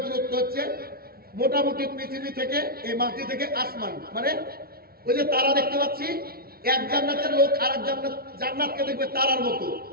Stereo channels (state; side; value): late; left; 0.44 ms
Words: দূরত্ব হচ্ছে মোটামুটি পৃথিবী থেকে, এই মাটি থেকে আসমান, মানে ওই যে তারা দেখতে পাচ্ছি, এক জান্নাতের লোক আর এক জান্নাতকে দেখবে তারার মতো।